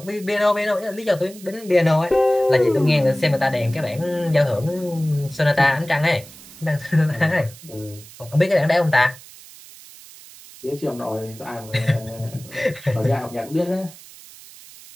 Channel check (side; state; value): right; noise; hiss, 19 dB below the sound